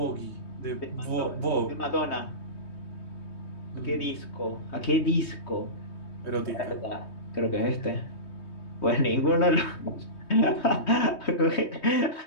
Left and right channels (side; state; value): right; late; 3.2 ms